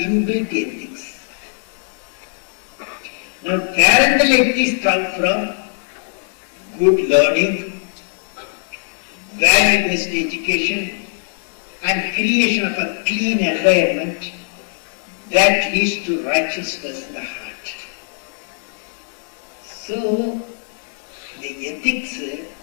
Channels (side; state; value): right; silent; digital silence